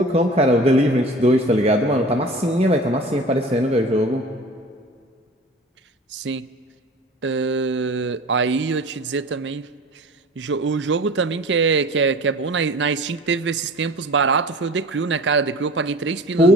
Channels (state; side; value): normal; both; correlation 0.40